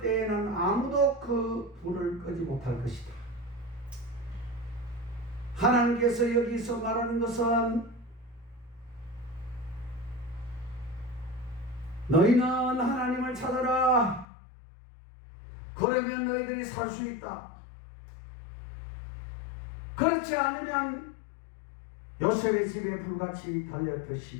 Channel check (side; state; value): right; drops out; at 14.2 s